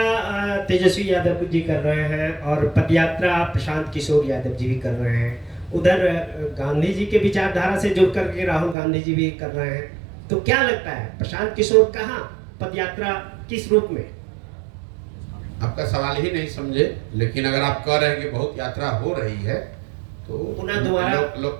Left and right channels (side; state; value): left; drops out; at 8.8 s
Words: तेजस्वी यादव जी कर रहे हैं और पदयात्रा प्रशांत किशोर यादव जी भी कर रहे हैं। उधर गांधी जी के विचारधारा से जुड़ करके राहुल गांधी जी भी कर रहे हैं। तो क्या लगता है प्रशांत किशोर कहाँ, पदयात्रा किस रूप में? आपका सवाल ही नहीं समझे, लेकिन अगर आप कह रहे हैं कि बहुत यात्रा हो रही है तो पुनः दोबारा